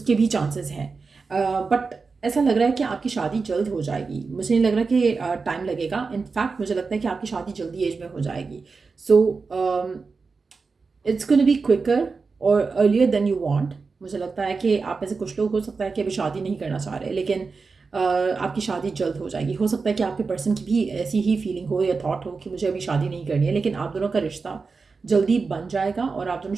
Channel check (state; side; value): quieter; left; 4.5 dB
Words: भी चांसेस हैं। बट ऐसा लग रहा है कि आपकी शादी जल्द हो जाएगी, मुझे नहीं लग रहा कि टाइम लगेगा। इनफैक्ट मुझे लगता है कि आपकी शादी जल्दी एज में हो जाएगी। So it's gonna be quicker और अर्लियर देन यू वांट। मुझे लगता है कि आप में से कुछ लोग हो सकता है कि अभी शादी नहीं करना चाह रहे, लेकिन आपकी शादी जल्द हो जाएगी। हो सकता है कि आपके पर्सन की भी ऐसी ही फीलिंग हो या थॉट हो कि मुझे अभी शादी नहीं करनी है, लेकिन आप दोनों का रिश्ता जल्दी बन जाएगा और आप दोनों